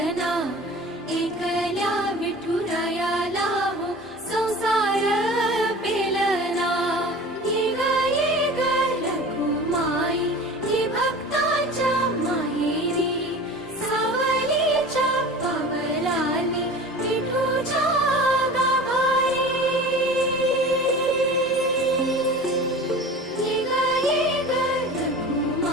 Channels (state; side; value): normal; both; correlation 0.38